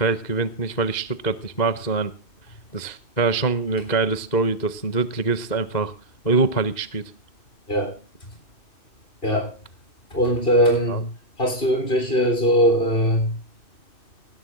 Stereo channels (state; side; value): late; right; 2.1 ms